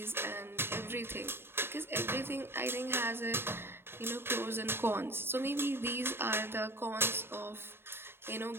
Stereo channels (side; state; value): left; late; 0.11 ms